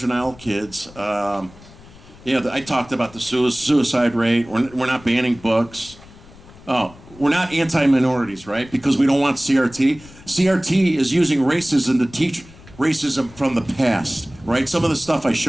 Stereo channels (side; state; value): left; noise; rumble, 22 dB below the sound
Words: kids. I talked about the suicide rate. We're not banning books. Oh, we're not anti-minorities, right? Because we don't want CRT. CRT is using racism to teach racism from the past, right? Some of the stuff I